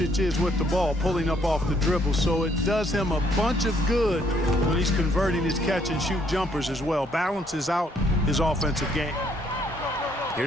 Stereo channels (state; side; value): normal; both; correlation 0.68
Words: is with the ball, pulling up off the dribble, so it does him a bunch of good when he's converting his catch-and-shoot jumpers as well. Balances out his offensive game.